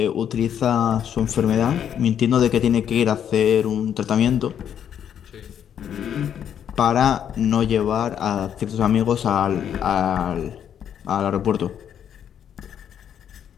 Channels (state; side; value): quieter; right; 9.1 dB